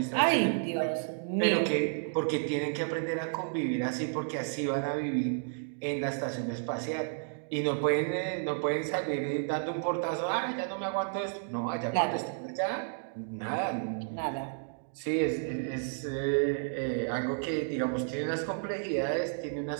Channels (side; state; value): left; silent; digital silence